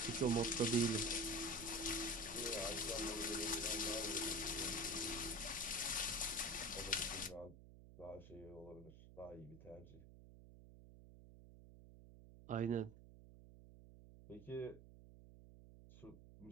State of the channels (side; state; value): right; noise; hum, 18 dB below the sound